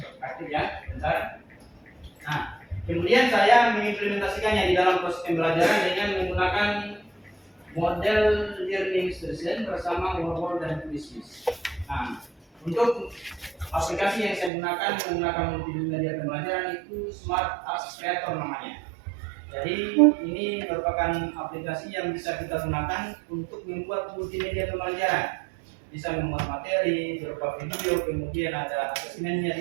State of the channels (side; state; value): left; drops out; at 14.5 s